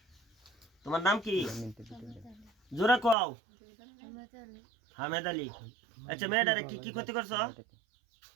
তোমার নাম কি? জোরে কও। হামেদ আলী। আচ্ছা মেয়েটারে কি কি ক্ষতি করছো?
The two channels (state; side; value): drops out; left; at 3.2 s